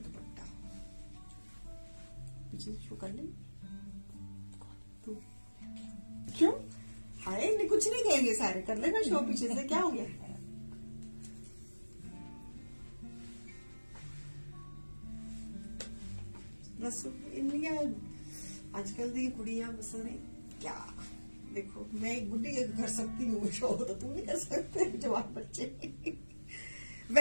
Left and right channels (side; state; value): both; inverted; correlation -1.00